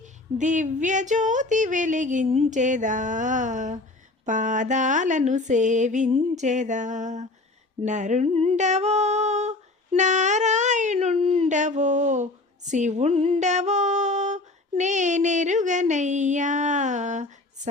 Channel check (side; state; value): right; quieter; 3.0 dB